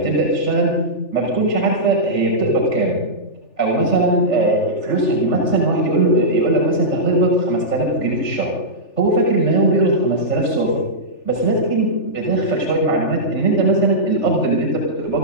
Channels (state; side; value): late; right; 3.4 ms